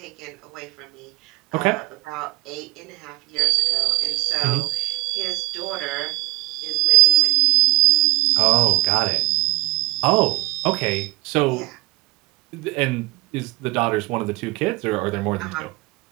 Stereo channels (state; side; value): quieter; left; 20.6 dB